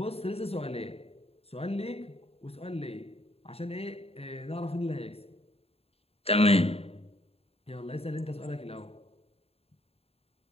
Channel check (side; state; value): right; late; 0.29 ms